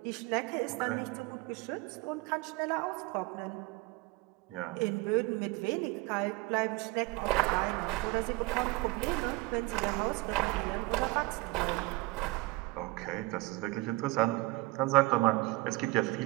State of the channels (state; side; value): quieter; left; 22.5 dB